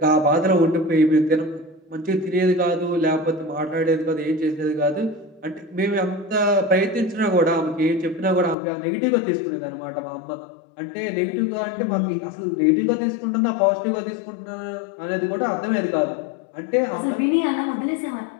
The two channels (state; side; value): drops out; right; at 8.6 s